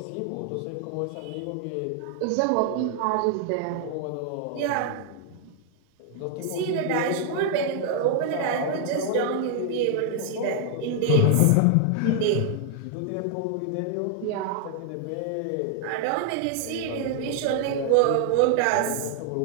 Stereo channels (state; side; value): different; both; correlation 0.00